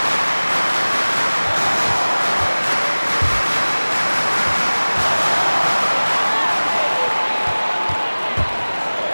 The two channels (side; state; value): both; inverted; correlation -1.00